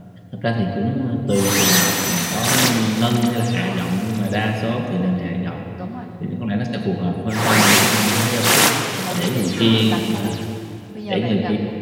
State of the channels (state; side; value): identical; both; correlation 1.00